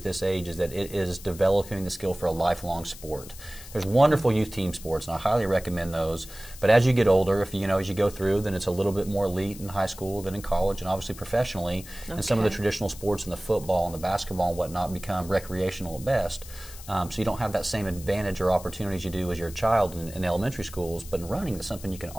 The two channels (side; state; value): left; noise; hiss, 16 dB below the sound